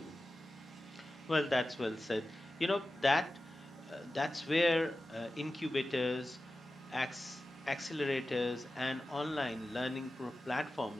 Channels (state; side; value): normal; both; correlation 0.94